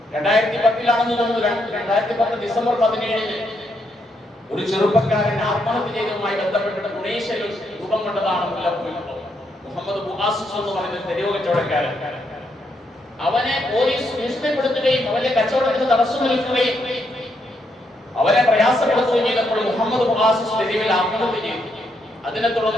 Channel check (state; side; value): normal; both; correlation 0.78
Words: 2010 തോന്നുന്നു, 2010 ഡിസംബർ 17 ഒരു ചെറുപ്പക്കാരൻ ആത്മഹത്യ ചെയ്തതുമായി ബന്ധപ്പെട്ട് തുണീഷ്യയിൽ രൂപം കൊണ്ടതാണ് മുല്ലപ്പൂ വിപ്ലവം. മുഹമ്മദ് ബുആസിസ് എന്ന് പറയുന്ന തെരുവ് കച്ചവടക്കാരൻ, അവനെ പോലീസ് ഭീഷണിപ്പെടുത്തുകയും അവന്റെ കച്ചവടത്തിന് തടസ്സം നിൽക്കുകയും അവരെ പ്രയാസപ്പെടുത്തുകയും ചെയ്തപ്പോൾ മുഹമ്മദ് ബുആസിസ് തെരുവിൽ ആത്മഹത്യ ചെയ്തു. അതിനെ